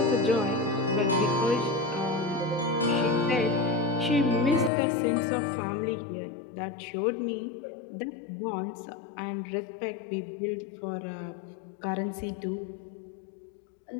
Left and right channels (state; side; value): drops out; right; at 4.7 s